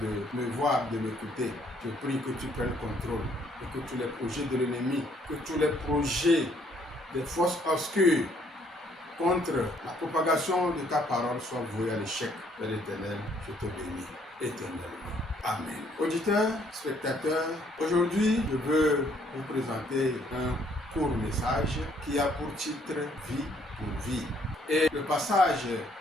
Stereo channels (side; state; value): both; normal; correlation 0.66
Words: de me voir, de m'écouter. Je prie que tu prennes contrôle et que tous les projets de l'ennemi, que tous les projets des forces obscures contre la propagation de ta parole soient voués à l'échec. Père éternel, je te bénis éternellement. Amen. Auditeurs, spectateurs, aujourd'hui, je veux vous présenter un court message qui a pour titre « Vie pour vie ». Et le passage